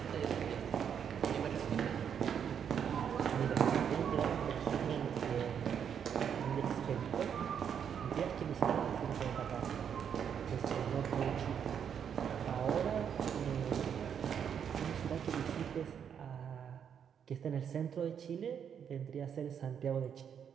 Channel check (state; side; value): quieter; left; 8.0 dB